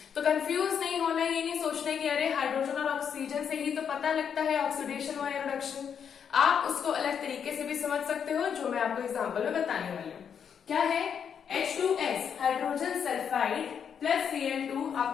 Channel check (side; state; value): right; quieter; 7.6 dB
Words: तो कंफ्यूज नहीं होना, ये नहीं सोचना कि अरे हाइड्रोजन और ऑक्सीजन से ही तो पता लगता है ऑक्सीडेशन और रिडक्शन। आप उसको अलग तरीके से भी समझ सकते हो, जो मैं आपको एग्जाम्पल में बताने वाली हूँ। क्या है, H2S hydrogen sulphide plus Cl2